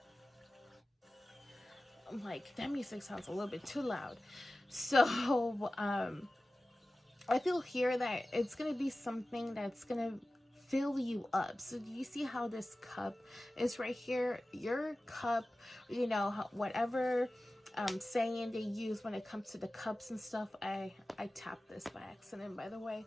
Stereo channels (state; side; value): normal; both; correlation 0.96